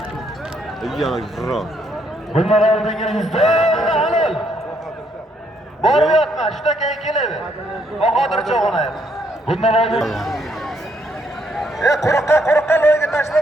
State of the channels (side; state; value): both; normal; correlation 0.72